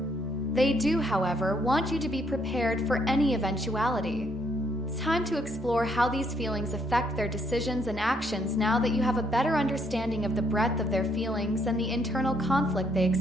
They do, however, want you to be prepared for any eventuality. It's time to explore how these feelings affect their decisions and actions now that you have a better understanding of the breadth of their feelings and the internal conflict they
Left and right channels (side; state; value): both; normal; correlation 0.71